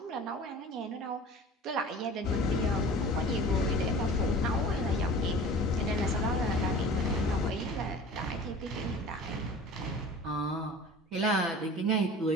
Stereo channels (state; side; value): normal; both; correlation 0.40